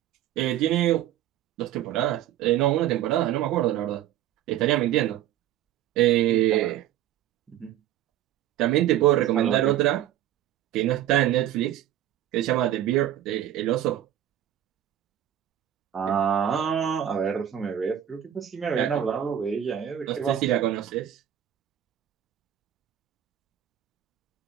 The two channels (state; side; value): quieter; left; 11.5 dB